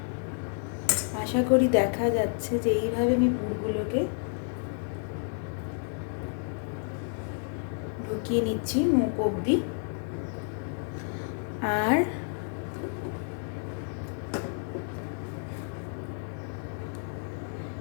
আশা করি দেখা যাচ্ছে যে এইভাবে আমি পুরগুলোকে ঢুকিয়ে নিচ্ছি মুখ অবধি। আর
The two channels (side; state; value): right; silent; 58 dB below the other